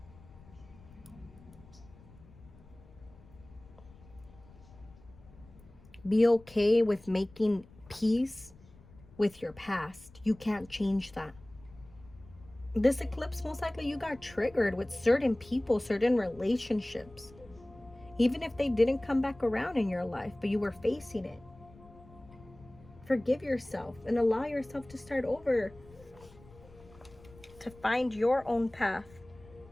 Be okay with making peace with your past. You can't change that. This eclipse, most likely you got triggered with certain people, certain relationships. Even if they didn't come back around in your life, but you were facing it. Forgive yourself and allow yourself to start over. To find your own path.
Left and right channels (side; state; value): left; noise; rumble, 23 dB below the sound